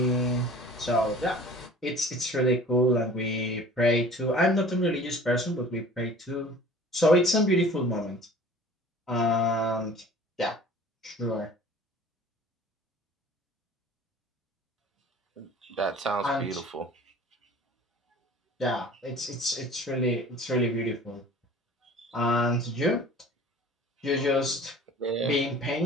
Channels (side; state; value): both; normal; correlation 0.45